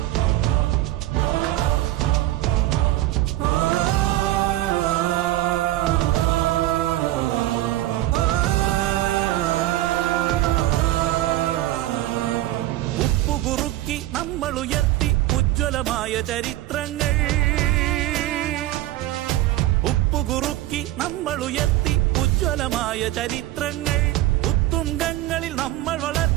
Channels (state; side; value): quieter; left; 15.6 dB